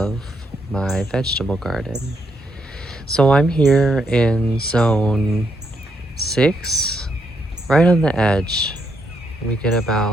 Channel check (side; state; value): both; normal; correlation 0.77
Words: my vegetable garden. So I'm here in zone 6, right on the edge. We get